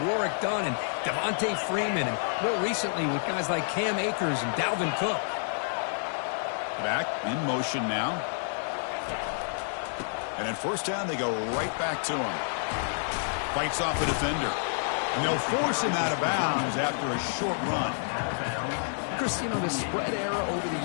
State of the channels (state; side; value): silent; right; digital silence